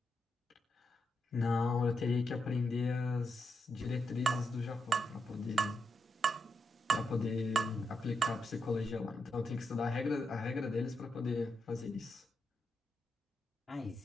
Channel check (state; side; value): normal; both; correlation 0.83